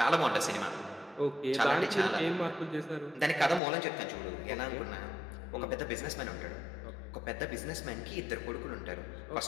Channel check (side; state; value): right; drops out; at 3.6 s